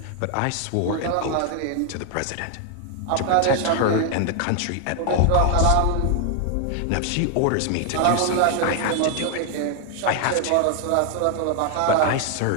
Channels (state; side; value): different; both; correlation 0.00